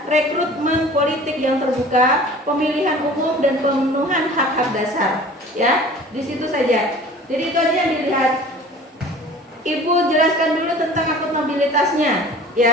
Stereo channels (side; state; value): both; normal; correlation 0.44